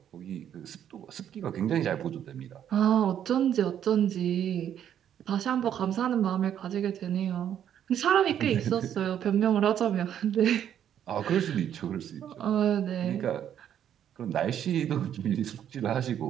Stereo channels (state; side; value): quieter; left; 9.8 dB